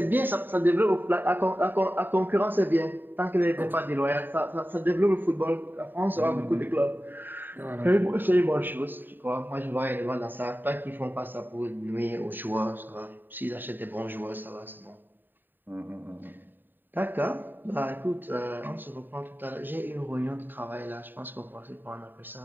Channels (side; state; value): left; late; 0.092 ms